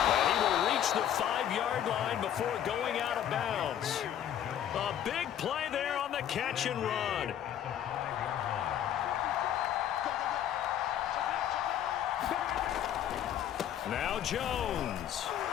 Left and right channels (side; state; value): right; quieter; 10.4 dB